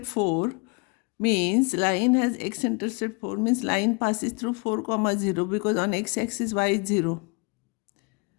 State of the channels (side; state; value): right; quieter; 31.8 dB